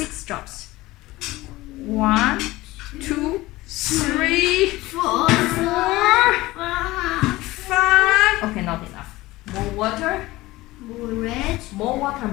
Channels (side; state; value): right; quieter; 18.8 dB